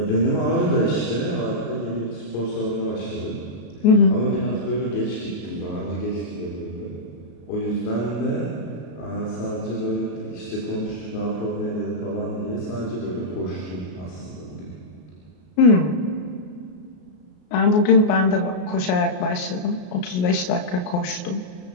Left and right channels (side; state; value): right; late; 33 ms